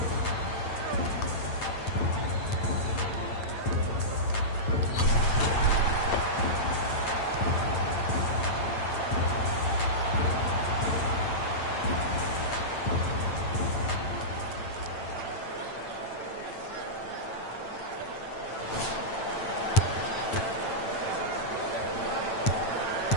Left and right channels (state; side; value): late; right; 8.9 ms